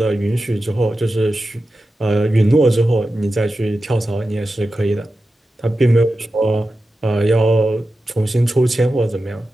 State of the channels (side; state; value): both; normal; correlation 0.92